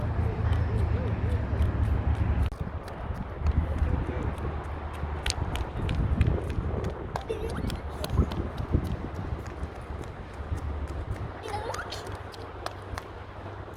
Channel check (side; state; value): both; identical; correlation 1.00